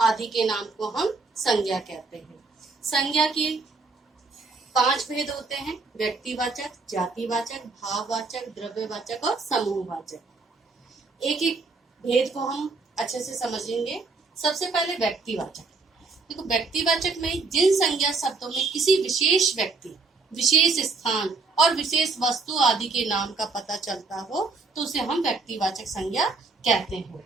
के नाम को हम संज्ञा कहते हैं। संज्ञा के 5 भेद होते हैं: व्यक्तिवाचक, जातिवाचक, भाववाचक, द्रव्यवाचक और समूहवाचक। एक एक भेद को हम अच्छे से समझेंगे। सबसे पहले व्यक्तिवाचक। देखो, व्यक्तिवाचक में जिन संज्ञा शब्दों में किसी विशेष व्यक्ति, विशेष स्थान और विशेष वस्तु आदि के नाम का पता चलता हो तो उसे हम व्यक्तिवाचक संज्ञा कहते हैं।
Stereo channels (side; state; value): left; quieter; 4.0 dB